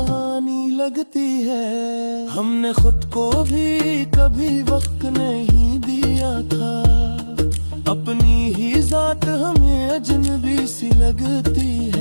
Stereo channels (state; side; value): inverted; both; correlation -1.00